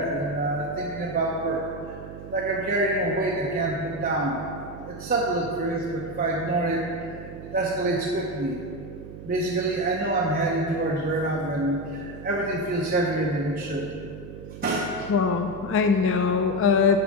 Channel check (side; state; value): right; noise; hum, 12 dB below the sound